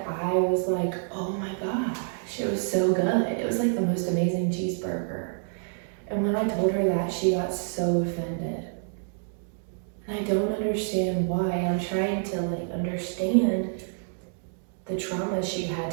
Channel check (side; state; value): left; silent; digital silence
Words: I was like, oh my gosh, it was so good. It was like the most amazing cheeseburger. And when I told her that, she got so offended. And I don't understand why. I'm trying to, like, understand the trauma she had